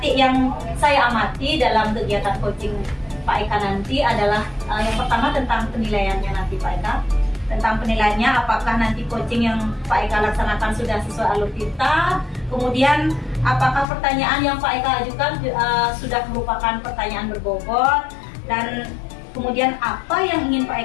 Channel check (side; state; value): right; drops out; at 13.9 s